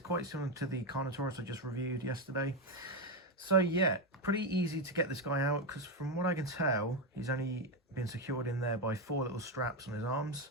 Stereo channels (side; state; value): both; normal; correlation 0.09